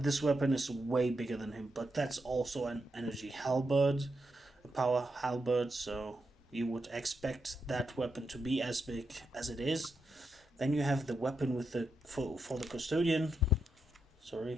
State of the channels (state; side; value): normal; both; correlation 0.84